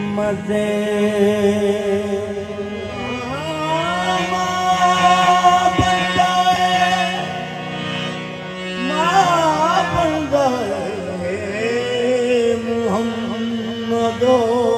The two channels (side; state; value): both; identical; correlation 1.00